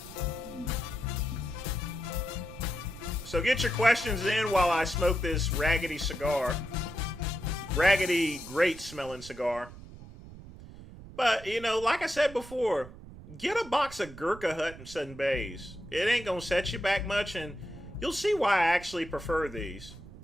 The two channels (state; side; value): noise; right; rumble, 16 dB below the sound